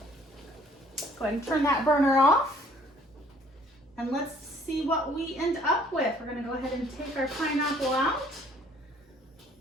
Go ahead and turn that burner off. And let's see what we end up with. We're going to go ahead and take our pineapple out.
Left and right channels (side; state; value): both; normal; correlation 0.59